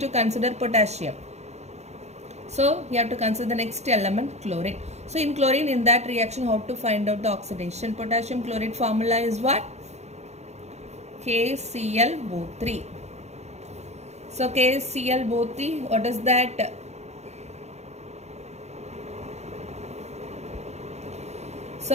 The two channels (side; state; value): left; late; 0.32 ms